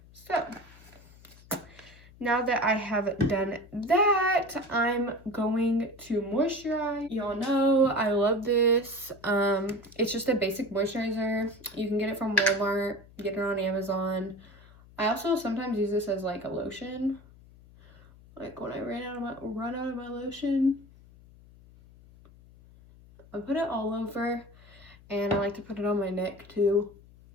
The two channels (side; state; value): left; noise; hum, 23 dB below the sound